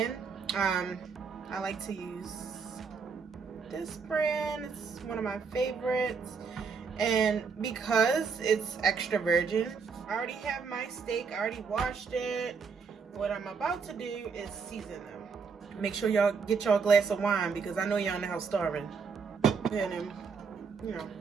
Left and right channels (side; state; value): left; quieter; 5.4 dB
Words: I like to use this brand. It's one of my favorites. And because it's extra virgin, I already have my steak. I already washed it. What I'm about to do is season them. Make sure y'all get y'all a glass of wine because I know y'all in the house starving. And you know,